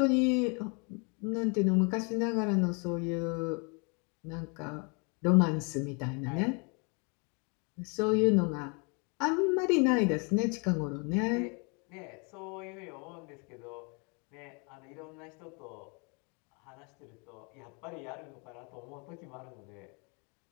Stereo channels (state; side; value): quieter; right; 33.9 dB